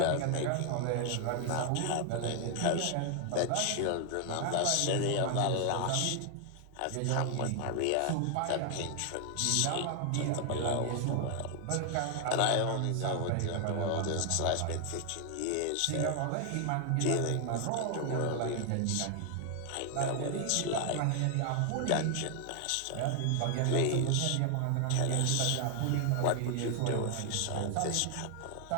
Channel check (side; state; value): both; different; correlation 0.00